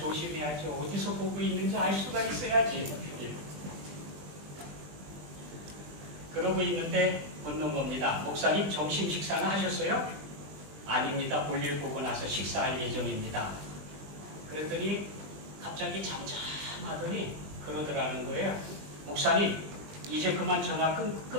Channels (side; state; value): left; late; 20 ms